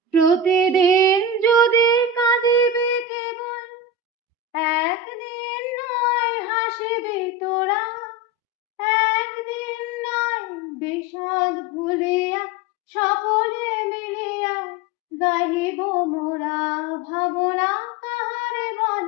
প্রতিদিন যদি কাঁদিবে কেবল, একদিন নয় হাসিবি তোরা। একদিন নয় বিষাদ ভুলিয়া সকলে মিলিয়া গাহিব মোরা। ভাবনা কাহারে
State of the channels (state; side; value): normal; both; correlation 0.23